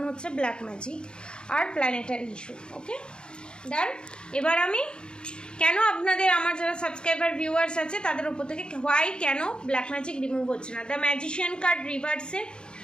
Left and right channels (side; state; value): right; late; 0.050 ms